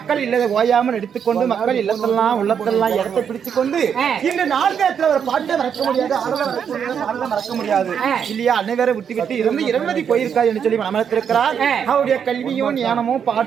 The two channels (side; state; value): left; quieter; 7.7 dB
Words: இல்லதை ஓயாமல் எடுத்துக்கொண்டு மக்கள் இல்லத்தெல்லாம் உள்ளத்தெல்லாம் இடத்தை பிடிச்சு கொண்டு இந்த நாடகத்துல ஒரு பாட்டை மறக்க முடியாது, ஆடலை மறக்க முடியாது இல்லையா? அனைவரை விட்டு விட்டு இருந்து 20 போயிருக்காது என்று சொல்லி மனத்திருக்கிறார். அவருடைய கல்வியும் ஞானமும்